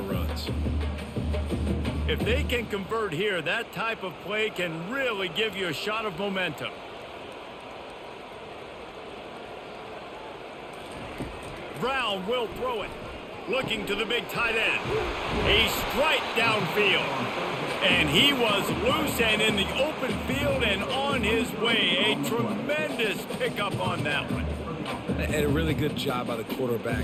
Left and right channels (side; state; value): both; identical; correlation 1.00